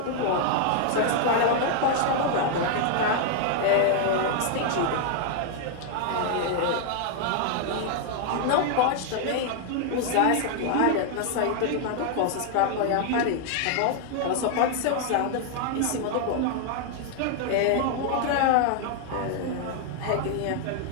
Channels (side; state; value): both; different; correlation 0.00